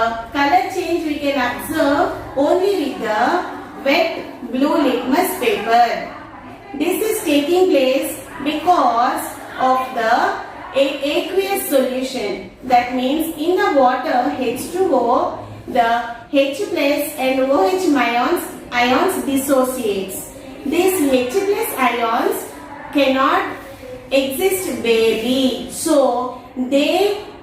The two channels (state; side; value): identical; both; correlation 1.00